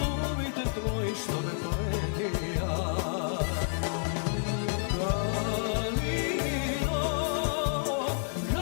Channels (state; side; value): silent; right; digital silence